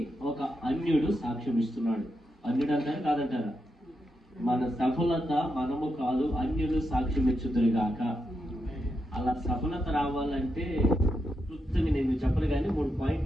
ఒక అన్యుడు సాక్ష్యం ఇస్తున్నాడు. అన్యుడు అంటారు కాదంటారా? మన సఫలత మనము కాదు, అన్యులు సాక్ష్యం ఇచ్చుదురు గాక. అలా సఫలత రావాలంటే క్లుప్తంగా నేను చెప్పను, కానీ 3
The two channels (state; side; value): normal; both; correlation 0.84